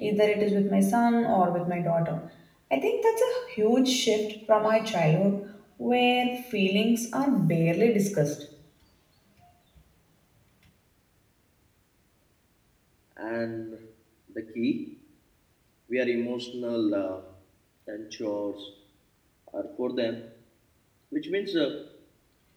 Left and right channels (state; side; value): identical; both; correlation 1.00